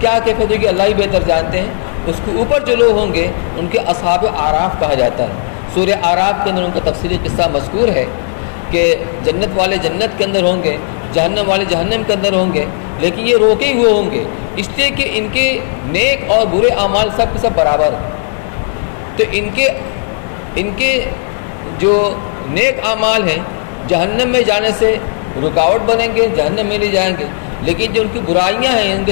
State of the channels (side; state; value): right; silent; digital silence